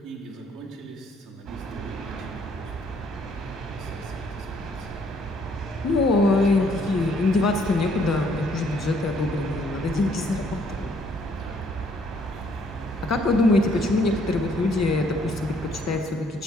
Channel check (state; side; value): normal; both; correlation 0.65